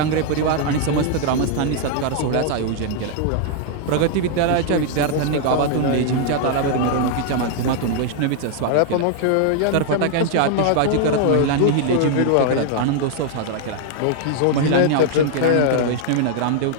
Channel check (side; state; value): both; different; correlation 0.00